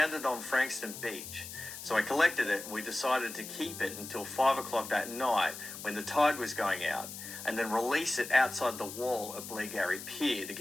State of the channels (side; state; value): left; noise; hiss, 10 dB below the sound